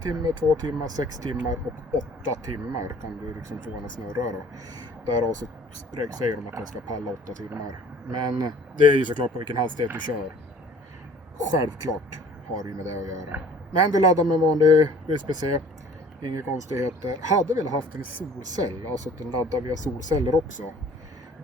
timme, 2 timmar, 6 timmar och 8 timmar kan du liksom få den att snurra då. Där så säger de att den ska palla 8 timmar. Men det är ju såklart på vilken hastighet du kör. Självklart har det ju med det att göra. Men du laddar med vanlig USB-C. Inga konstigheter. Hade väl haft en solcell. Alltså att den laddar via solceller också.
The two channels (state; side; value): normal; both; correlation 0.51